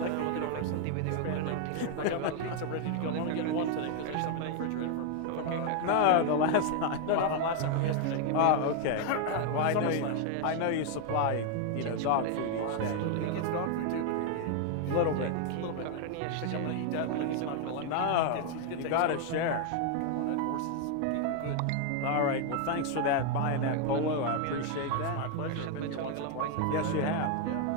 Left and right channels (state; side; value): different; both; correlation 0.00